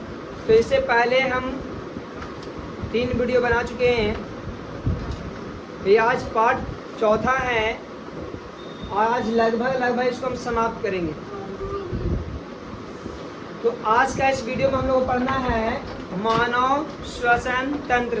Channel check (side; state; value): both; identical; correlation 1.00